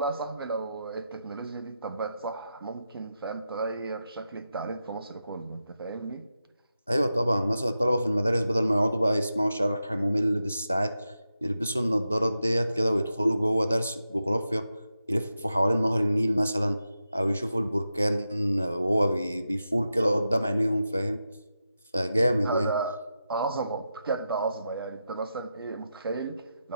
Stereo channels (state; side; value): inverted; both; correlation -0.89